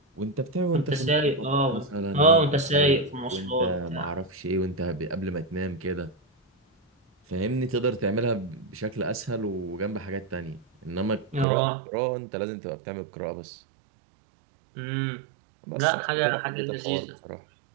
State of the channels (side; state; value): left; drops out; at 11.5 s